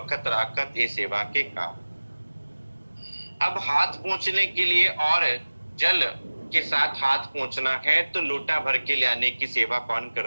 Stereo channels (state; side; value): inverted; both; correlation -1.00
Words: राकत ये सेवा के काम। अब हाथ पहुंचने के लिए और जल के साथ हाथ पहुंचना है तो लोटा भर के ले आने की सेवा कौन